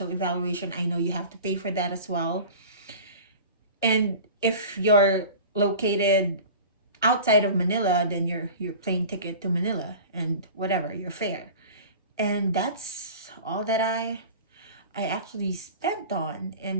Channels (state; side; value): inverted; both; correlation -0.38